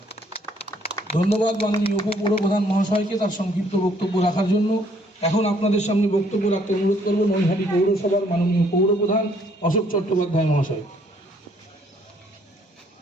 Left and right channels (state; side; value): normal; both; correlation 0.65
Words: ধন্যবাদ মাননীয় উপপৌরপ্রধান মহাশয়কে তার সংক্ষিপ্ত বক্তব্য রাখার জন্য। এখন আপনাদের সামনে বক্তব্য রাখতে অনুরোধ করব নৈহাটি পৌরসভার মাননীয় পৌরপ্রধান অশোক চট্টোপাধ্যায় মহাশয়।